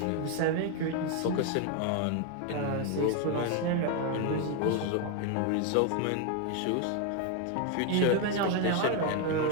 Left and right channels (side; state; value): both; different; correlation 0.01